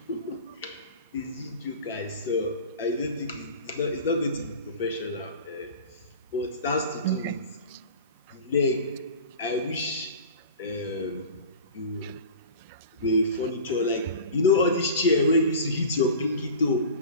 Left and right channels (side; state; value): both; inverted; correlation -0.35